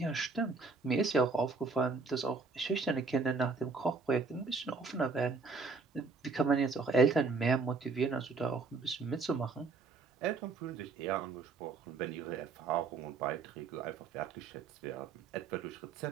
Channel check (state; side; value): quieter; left; 4.2 dB